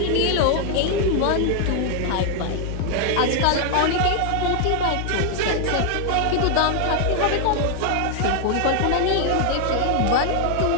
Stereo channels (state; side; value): different; both; correlation 0.00